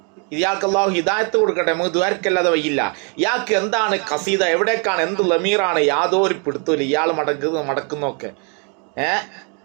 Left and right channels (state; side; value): quieter; left; 37.4 dB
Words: ഇയാൾക്ക് അല്ലാഹു ഹിദായത്ത് കൊടുക്കട്ടെ, നമുക്ക് ദ്വാരക്കല്ലാതെ വയ്യില്ല. ഇയാൾക്ക് എന്താണ് ഖസീദ, എവിടേക്കാണ്, എന്ത് ലമീറാണ്, യാതൊരു പിടുത്തമില്ല. ഇയാൾ മടക്കുന്നൊക്കെ